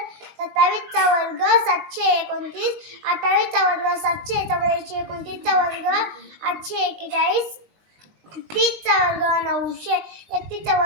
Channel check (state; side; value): late; left; 20 ms